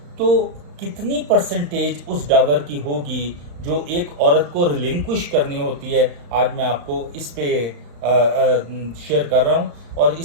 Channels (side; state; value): left; late; 35 ms